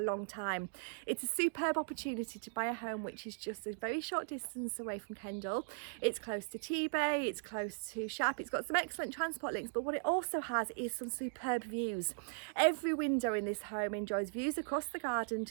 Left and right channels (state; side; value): silent; left; digital silence